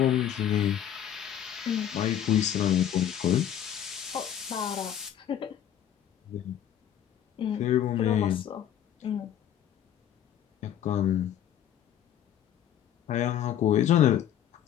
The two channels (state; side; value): quieter; right; 10.4 dB